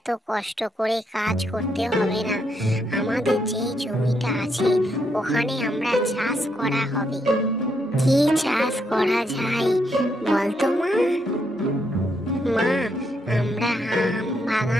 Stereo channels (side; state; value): both; normal; correlation 0.77